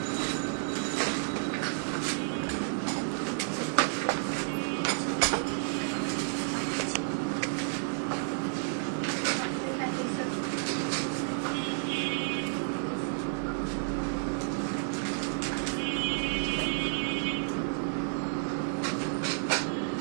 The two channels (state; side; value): silent; left; 57 dB below the other